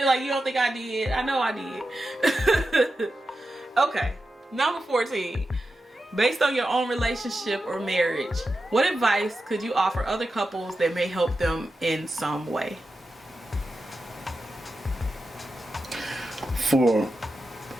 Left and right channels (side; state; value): both; normal; correlation 0.91